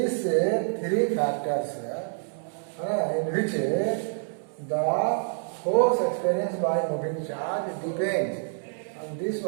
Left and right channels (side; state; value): left; silent; 60 dB below the other